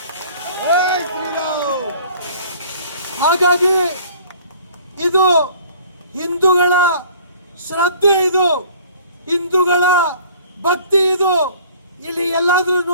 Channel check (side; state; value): both; inverted; correlation -0.51